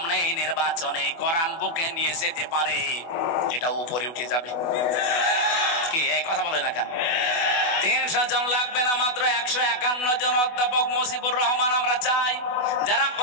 এই নির্বাচনে কোরআন বুকে নিয়ে যেতে পারে, এটা উপরে উঠে যাবে। কি এই কথা বলে না কেন? ৩০০ জন লাগবে না, মাত্র ১৫১ জন অধ্যাপক মুজিবুর রহমান আমরা চাই, যারা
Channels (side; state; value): right; late; 24 ms